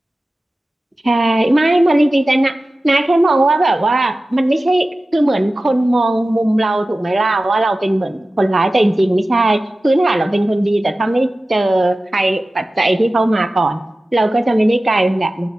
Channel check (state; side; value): normal; both; correlation 0.96